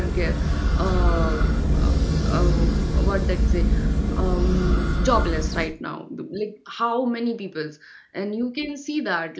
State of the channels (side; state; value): both; identical; correlation 1.00